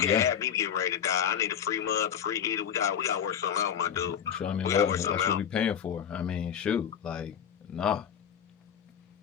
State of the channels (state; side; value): quieter; right; 8.5 dB